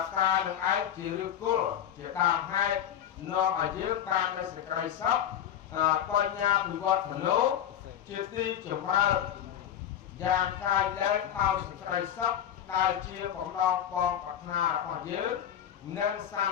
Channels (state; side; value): quieter; right; 10.1 dB